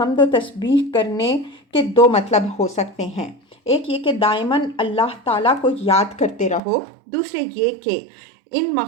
و تسبیح کرنے کے دو مطلب ہو سکتے ہیں، ایک یہ کہ دائماً اللہ تعالیٰ کو یاد کرتے رہو، دوسرے یہ کہ ان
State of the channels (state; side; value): drops out; left; at 6.6 s